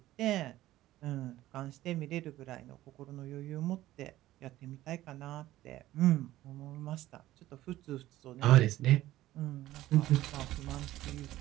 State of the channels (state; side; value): quieter; left; 15.2 dB